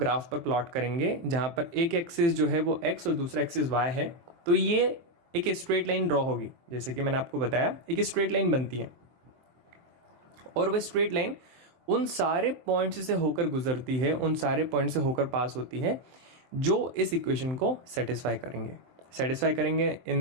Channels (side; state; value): left; late; 23 ms